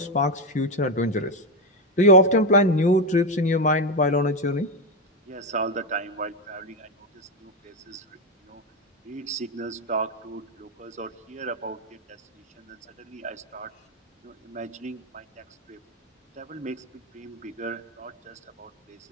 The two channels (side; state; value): both; normal; correlation 0.09